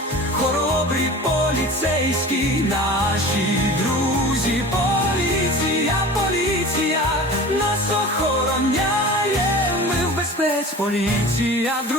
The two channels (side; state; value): both; normal; correlation 0.37